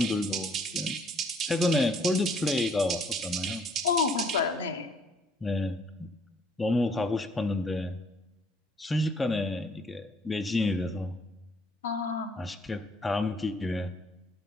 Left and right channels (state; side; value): normal; both; correlation 0.63